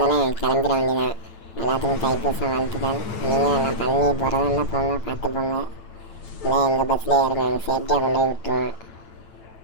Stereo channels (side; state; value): right; late; 9.0 ms